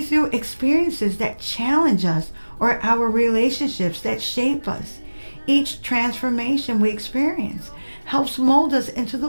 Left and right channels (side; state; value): both; inverted; correlation -1.00